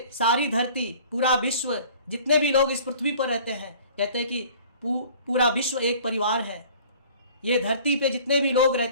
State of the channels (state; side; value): inverted; both; correlation -0.49